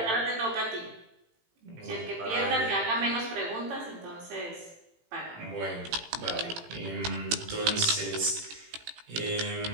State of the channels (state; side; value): late; left; 18 ms